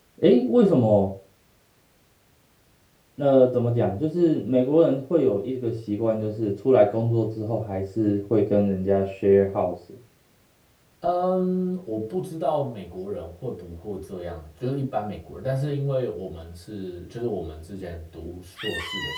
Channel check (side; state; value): both; identical; correlation 1.00